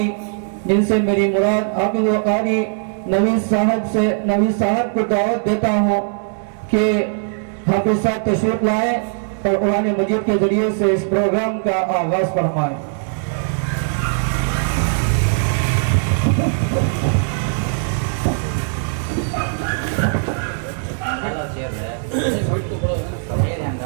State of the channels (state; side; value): silent; left; digital silence